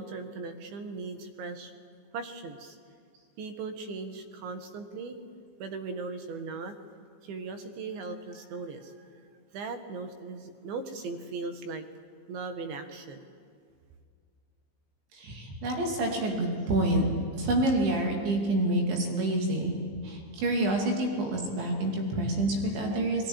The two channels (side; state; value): left; late; 15 ms